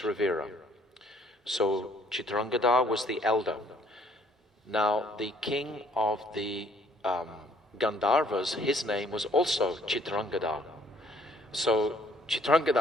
So Chitrangada was the elder. Now the king of the Gandharvas, his name was also Chitrangada. So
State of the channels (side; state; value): both; normal; correlation 0.62